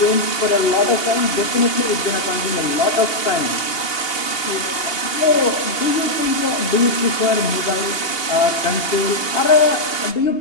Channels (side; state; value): right; late; 2.8 ms